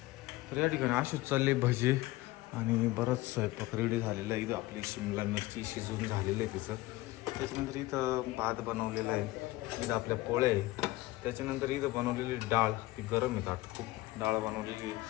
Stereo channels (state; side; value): quieter; right; 18.8 dB